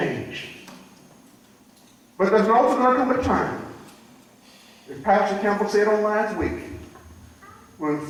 But there's also going to come a time, as Pastor Campbell said on last week, when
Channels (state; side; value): identical; both; correlation 1.00